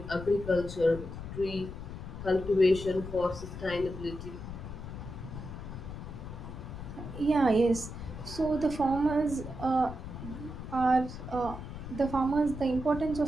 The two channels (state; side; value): noise; left; rumble, 9 dB below the sound